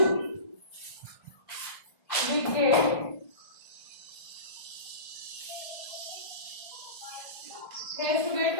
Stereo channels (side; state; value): right; late; 1.5 ms